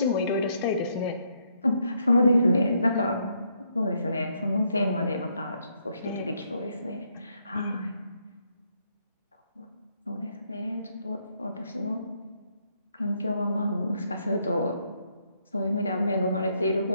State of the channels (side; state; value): both; inverted; correlation -0.74